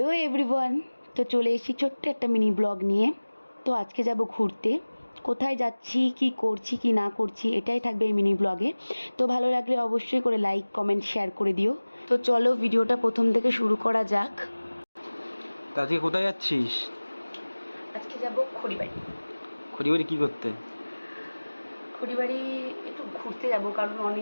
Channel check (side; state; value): both; inverted; correlation -1.00